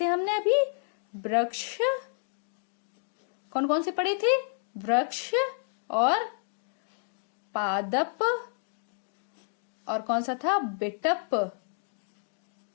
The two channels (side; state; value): right; silent; digital silence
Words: हमने अभी? वृक्ष। कौन कौन से पढ़े थे? वृक्ष, और पादप, और कौन सा था? बिटप।